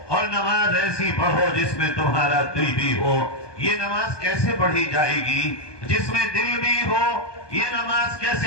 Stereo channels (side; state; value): right; late; 1.2 ms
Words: اور نماز ایسی پڑھو جس میں تمہارا دل بھی ہو. یہ نماز کیسے پڑھی جائے گی جس میں دل بھی ہو؟ یہ نماز